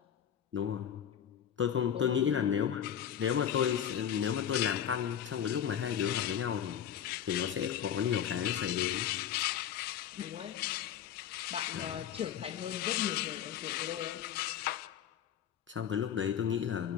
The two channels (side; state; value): right; quieter; 9.4 dB